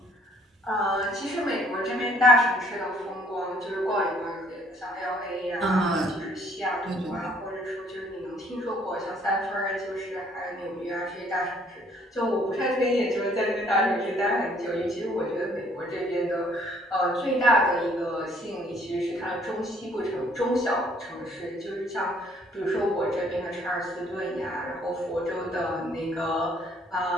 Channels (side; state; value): both; normal; correlation 0.61